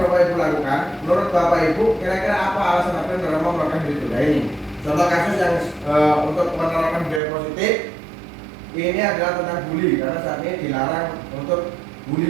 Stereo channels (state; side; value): drops out; left; at 7.2 s